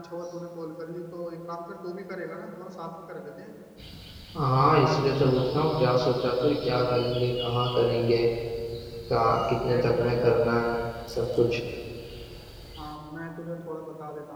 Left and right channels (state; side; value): identical; both; correlation 1.00